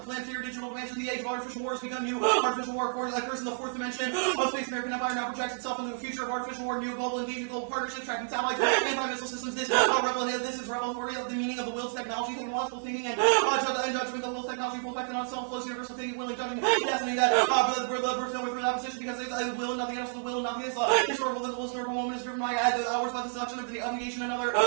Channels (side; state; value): left; silent; digital silence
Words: planetary digital dimension. The age of artificial war has begun. New artificial war occurs in the fourth dimension of space. American Empire now projects itself into the future of artificial war, new global engagement, global partnerships, tracking satellites, anti-missile systems. This is revelatory of the meaning of the will to technology, technological thinking, and judgment. The will to technology, full effect, and self-flows, universal thinking, willing, judging, destiny. That the birth with that position because it's will and nothing else. The will and nothing else. Historical moment is driven by hours by the seduction of the obligation. Another